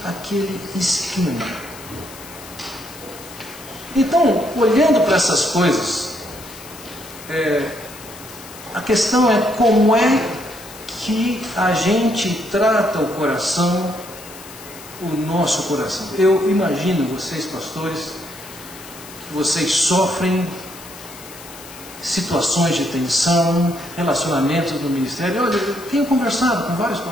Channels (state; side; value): noise; left; hiss, 17 dB below the sound